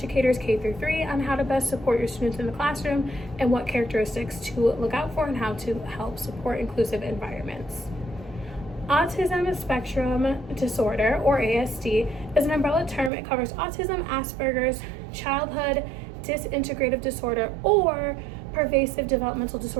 K-3 on how to best support your students in the classroom and what characteristics to look out for and how to help support inclusive environments. Autism spectrum disorder, or ASD, is an umbrella term. It covers autism, Asperger's, childhood disintegrative disorder, or pervasive developmental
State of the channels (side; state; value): left; drops out; at 13.1 s